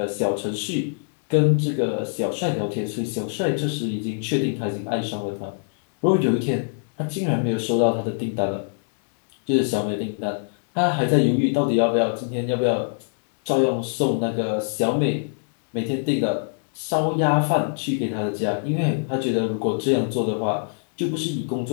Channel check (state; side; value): silent; right; digital silence